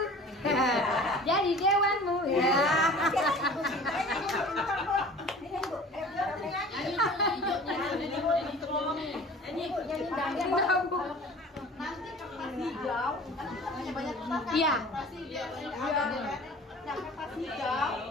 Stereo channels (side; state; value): both; normal; correlation 0.43